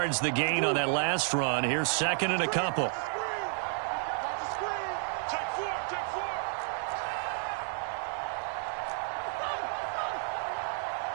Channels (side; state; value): left; silent; 57 dB below the other